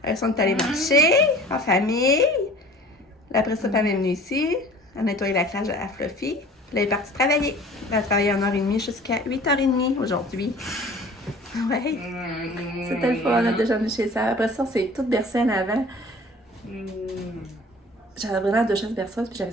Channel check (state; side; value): normal; both; correlation 0.46